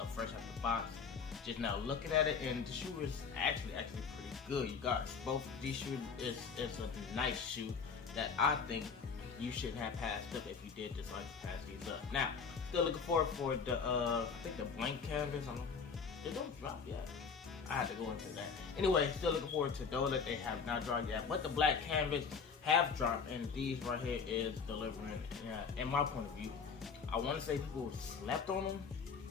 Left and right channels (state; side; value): quieter; right; 5.8 dB